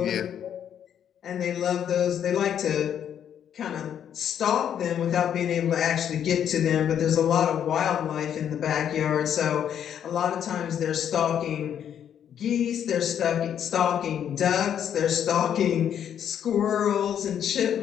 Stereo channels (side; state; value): right; quieter; 9.2 dB